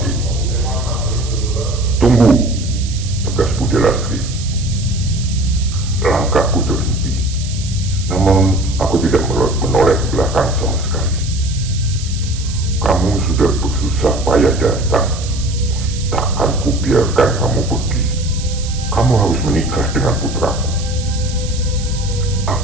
ini. "Tunggu," tegas Bude Lastri. Langkahku terhenti, namun aku tidak menoleh ke belakang sama sekali. "Kamu sudah bersusah payah datang. Takkan kubiarkan kamu pergi. Kamu harus menikah dengan putraku."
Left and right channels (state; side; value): noise; right; hiss, 12 dB below the sound